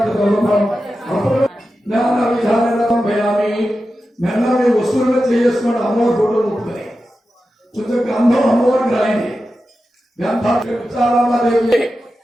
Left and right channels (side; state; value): both; normal; correlation 0.92